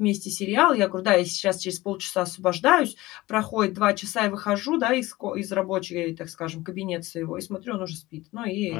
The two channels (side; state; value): right; quieter; 19.0 dB